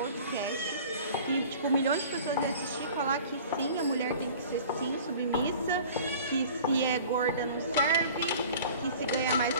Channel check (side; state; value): both; inverted; correlation -0.45